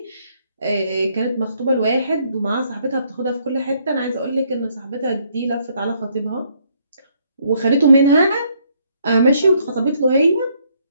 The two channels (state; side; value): inverted; both; correlation -0.69